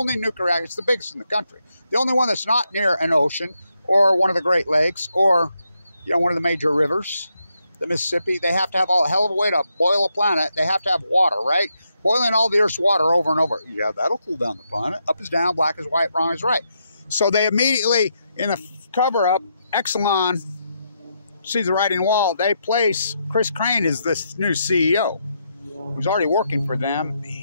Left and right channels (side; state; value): both; inverted; correlation -0.81